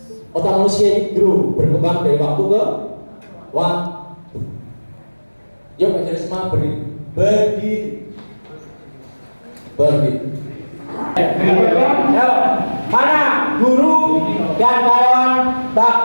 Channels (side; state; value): both; inverted; correlation -1.00